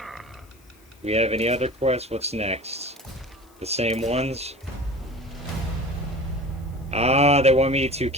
We have any other quests? What's next? The same ones? Ah, they want me to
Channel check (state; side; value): noise; left; hiss, 30 dB below the sound